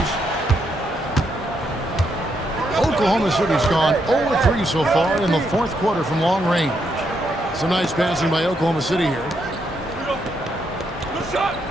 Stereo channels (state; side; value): normal; both; correlation 0.78